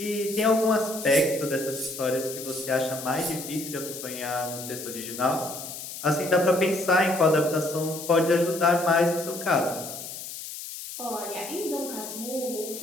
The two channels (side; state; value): left; noise; hiss, 10 dB below the sound